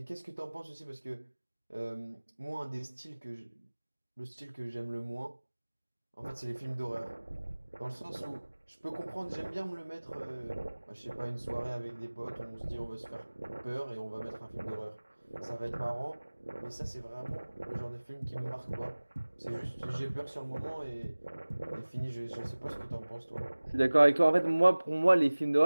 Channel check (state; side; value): inverted; both; correlation -1.00